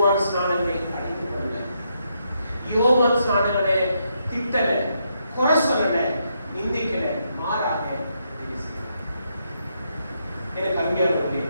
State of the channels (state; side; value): inverted; both; correlation -0.79